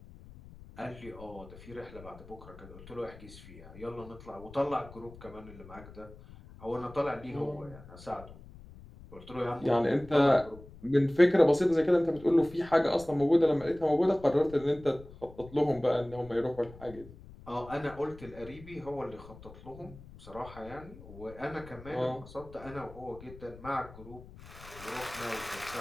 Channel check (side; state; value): left; noise; rumble, 18 dB below the sound